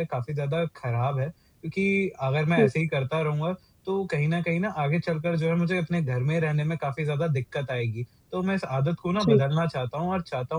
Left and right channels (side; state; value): both; identical; correlation 1.00